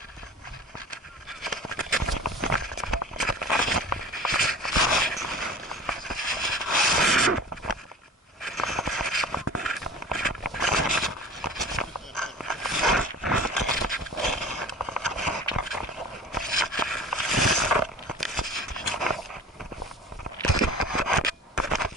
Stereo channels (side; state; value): both; normal; correlation 0.40